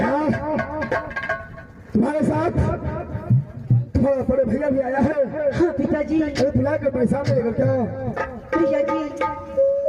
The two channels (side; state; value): both; identical; correlation 1.00